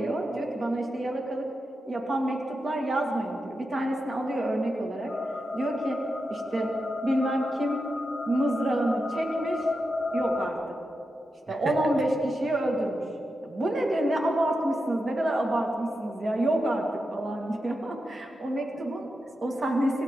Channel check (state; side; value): normal; both; correlation 0.88